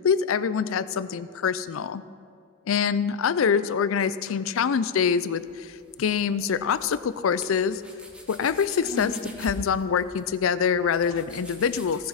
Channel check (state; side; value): quieter; right; 6.4 dB